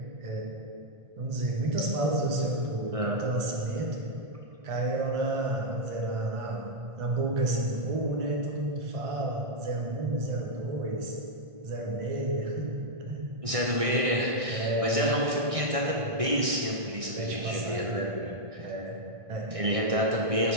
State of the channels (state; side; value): late; left; 1.6 ms